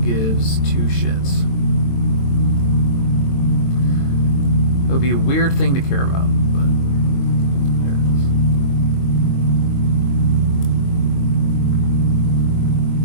gives two shits. It would be a weird thing to care about, but there it is.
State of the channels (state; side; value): late; right; 22 ms